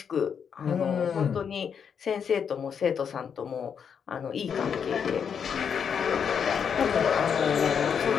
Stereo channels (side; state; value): right; quieter; 7.2 dB